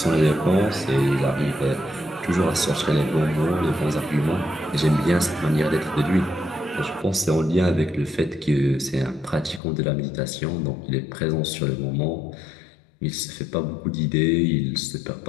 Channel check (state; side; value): drops out; right; at 9.6 s